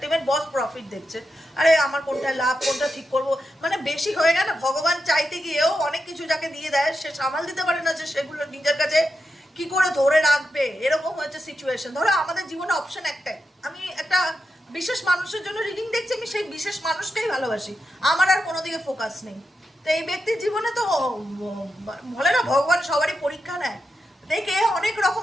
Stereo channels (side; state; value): both; normal; correlation 0.87